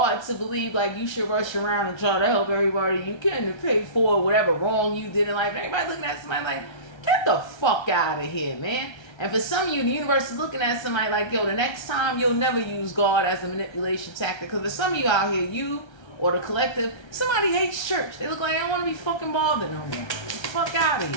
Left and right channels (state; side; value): late; right; 1.3 ms